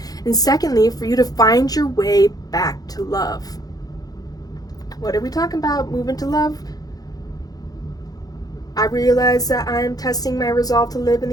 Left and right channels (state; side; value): late; right; 0.18 ms